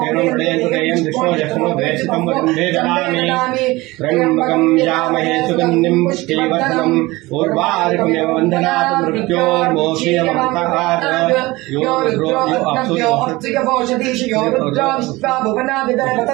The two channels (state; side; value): quieter; left; 20.9 dB